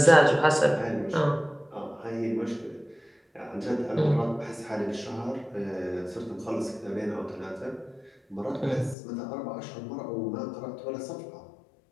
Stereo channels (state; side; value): drops out; right; at 9.0 s